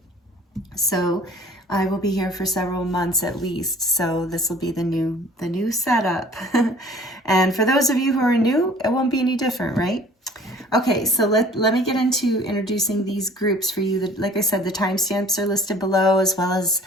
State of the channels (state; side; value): normal; both; correlation 0.50